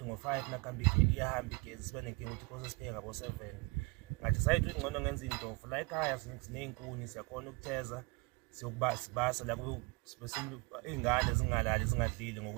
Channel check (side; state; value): left; quieter; 27.4 dB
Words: ngo-5 nakuhamba iyahamba igezi, siba nenkinga ukuthi kose sipheke ngabo-7. Ngathi sayithi ukuthi ngcono ngenza iy'ntofu la ekhaya siney'nkuni, siyakhona ukutheza sibasa la iy'ngane zingalali zingadlili